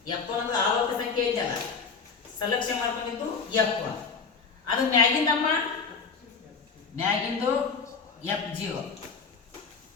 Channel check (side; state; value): right; quieter; 5.3 dB